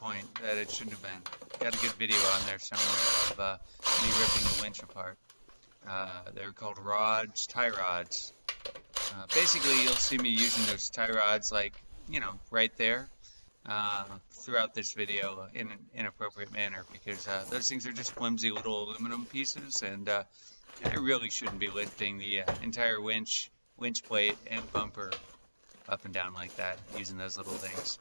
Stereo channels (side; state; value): both; inverted; correlation -1.00